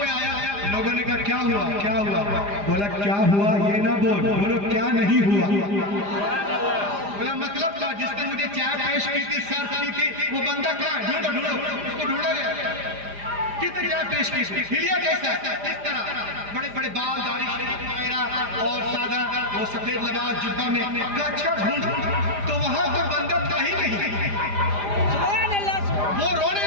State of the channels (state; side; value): late; left; 4.9 ms